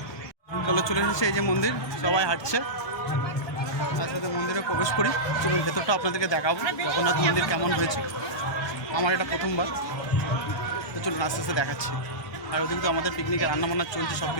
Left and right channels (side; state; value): right; late; 1.2 ms